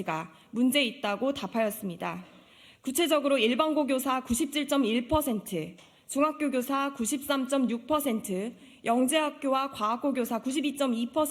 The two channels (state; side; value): identical; both; correlation 1.00